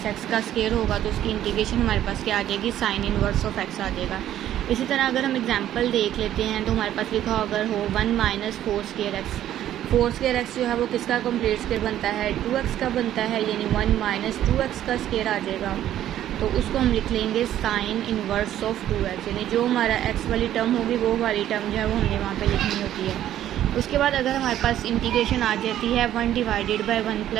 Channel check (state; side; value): quieter; left; 11.9 dB